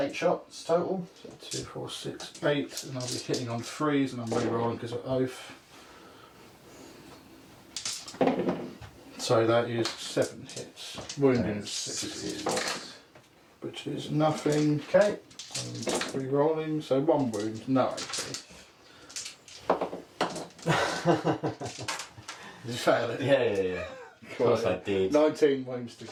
shots total. So 2, 4, 6, 8, and I'll be hitting on 3s, and I'm re-rolling because of oath. So that is 7 hits. Wounding is 6 hits, which is nothing. Okay. And re-rolling, so 1 wound, no AP. Did you fail it? Yeah. Of course I did. 19 wounds to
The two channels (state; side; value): identical; both; correlation 1.00